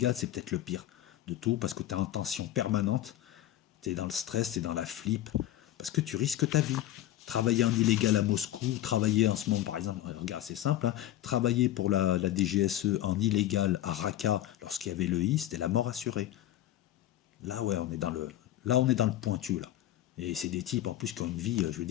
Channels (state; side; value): quieter; right; 13.3 dB